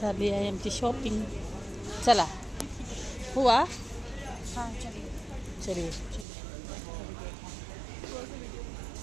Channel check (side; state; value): left; drops out; at 6.2 s